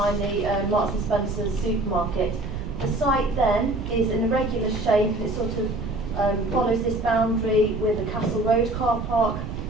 the Marks and Spencer's supermarket. The site then is in a regular shape. It sort of follows this boundary with the Castle Road car park,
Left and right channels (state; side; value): noise; right; rumble, 6 dB below the sound